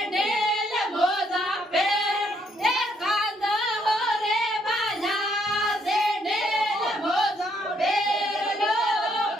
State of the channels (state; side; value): normal; both; correlation 0.71